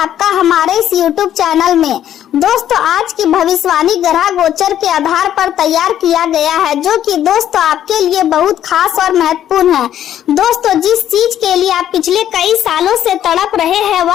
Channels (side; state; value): right; quieter; 11.0 dB